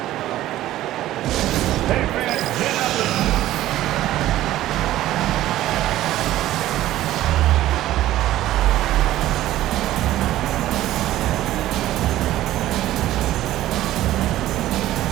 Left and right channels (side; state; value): left; quieter; 14.4 dB